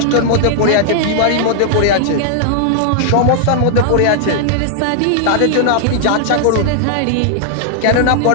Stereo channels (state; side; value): different; both; correlation -0.01